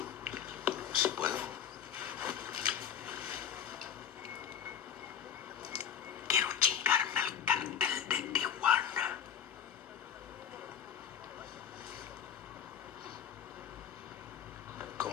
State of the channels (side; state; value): right; quieter; 8.5 dB